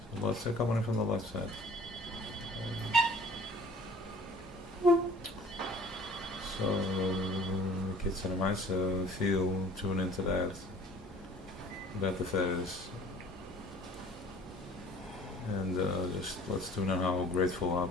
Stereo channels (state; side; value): normal; both; correlation 0.50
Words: So let's say coming in from the left side. So, kids and mice feel, tune into that. That the Teves. And just let's tune in how grateful, how